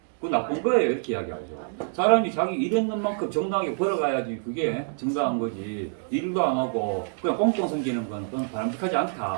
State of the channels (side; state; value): left; silent; digital silence